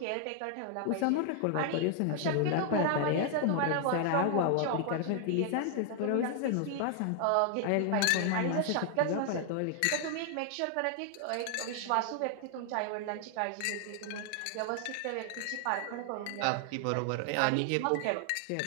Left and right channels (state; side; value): different; both; correlation 0.00